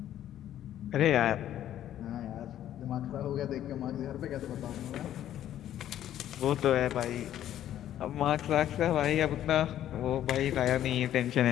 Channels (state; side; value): quieter; right; 11.6 dB